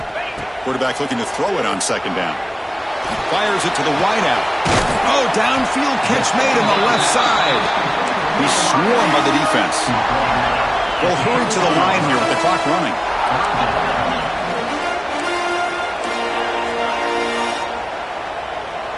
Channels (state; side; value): identical; both; correlation 1.00